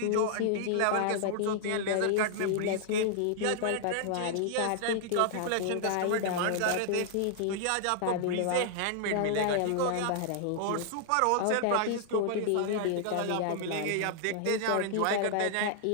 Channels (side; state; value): both; different; correlation -0.01